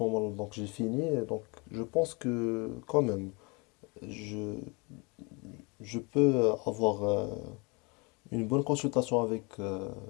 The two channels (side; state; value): right; quieter; 29.7 dB